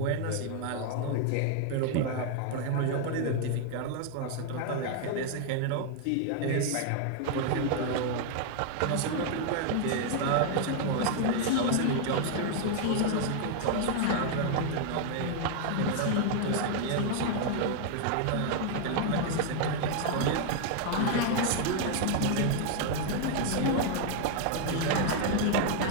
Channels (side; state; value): both; different; correlation 0.00